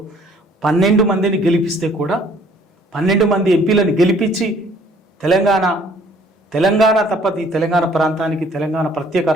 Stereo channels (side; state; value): both; normal; correlation 0.58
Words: 12 మందిని గెలిపిస్తే కూడా 12 మంది ఎంపీలను గెలిపించి తెలంగాణ తప్ప ఈ తెలంగాణ ప్రాంతానికి తెలంగాణ ప్రత్యేక